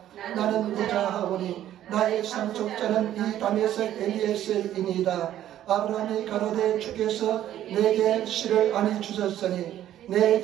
나는 무자하오니 나의 상속자는 이 다메섹 엘리에셀이니이다. 아브라함이 가로되 주께서 내게 씨를 아니 주셨으니 내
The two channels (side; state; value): left; quieter; 12.1 dB